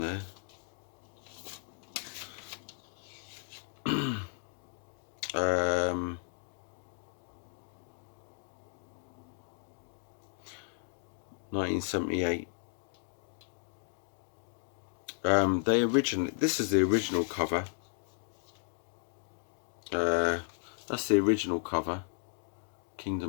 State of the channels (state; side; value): silent; right; 55 dB below the other